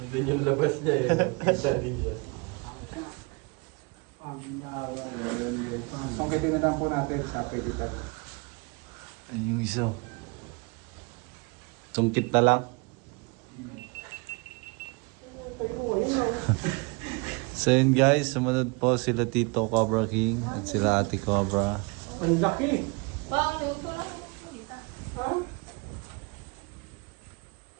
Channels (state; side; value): quieter; left; 30.4 dB